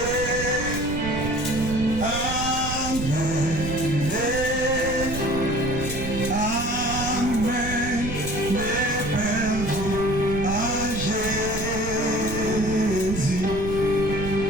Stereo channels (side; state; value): right; noise; rumble, 7 dB below the sound